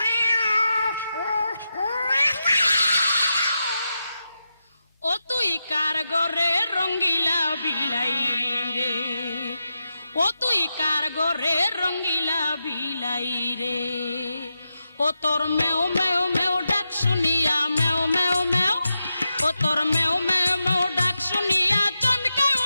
ও তুই কার গরে রঙ্গিলা বিলাই রে, ও তুই কার গরে রঙ্গিলা বিলাই রে, ও তোর মেও মেও মেও ডাক শুনিয়া মেও মেও মেও, ও তোর মেও মেও মেও ডাক শুনিয়া চমকে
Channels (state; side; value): inverted; both; correlation -0.88